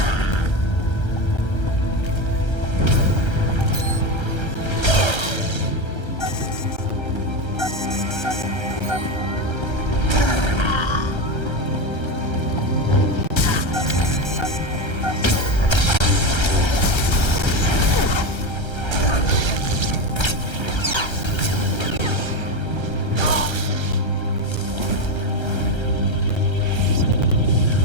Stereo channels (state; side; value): late; right; 1.3 ms